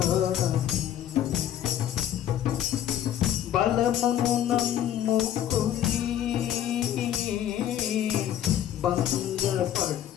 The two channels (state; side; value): quieter; right; 11.0 dB